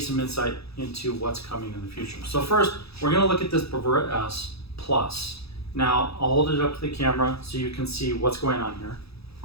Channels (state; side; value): late; right; 0.78 ms